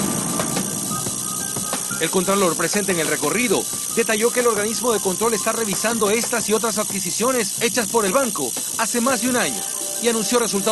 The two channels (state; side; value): identical; both; correlation 1.00